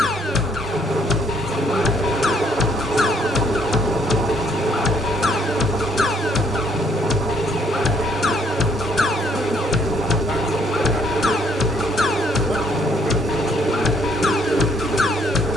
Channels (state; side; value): noise; right; rumble, 19 dB below the sound